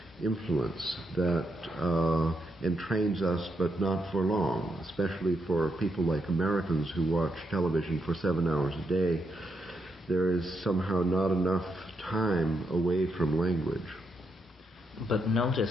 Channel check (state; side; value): normal; both; correlation 0.81